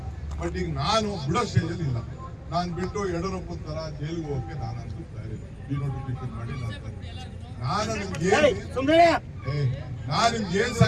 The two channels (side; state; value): both; identical; correlation 1.00